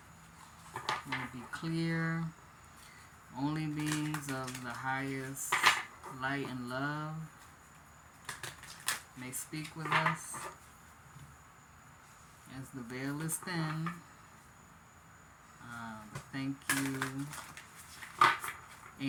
will be clear. Only beings of the highest light and love may speak with us as the veil is thin. Thank you,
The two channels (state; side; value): identical; both; correlation 1.00